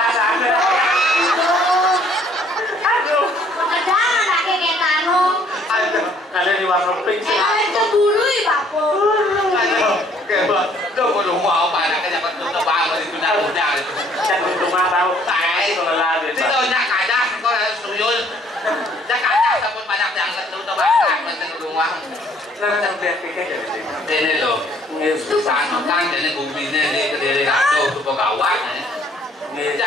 sampai aduh Jangan pakai kayak tanong. ada di warna pink sih Itu bulu ya papo. kayak lo mau rumah apa nak kerja betul betul banget itu nak udah itu jangan rumah tahu tai kalau lagi itu nak ada kau harus tuyul nak ada tapi banyak yang betul betul banget penting rumah nah biar pikir jadi ini lo sana kan jadi bumi ini dari rado tu pegawai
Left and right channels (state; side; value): normal; both; correlation 0.61